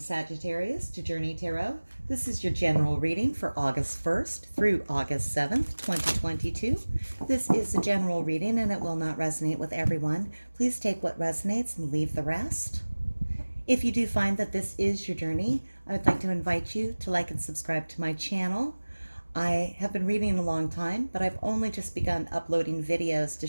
to Journey Tarot. This is your general reading for August 1st through August 7th, 2022. This is a general reading and it will not resonate with everyone. Please take what resonates and leave the rest. If you do find that this is your journey, I would like to invite you to like and subscribe to my channel. I have been reading a long time, but I've only just begun uploading videos to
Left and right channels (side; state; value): both; inverted; correlation -1.00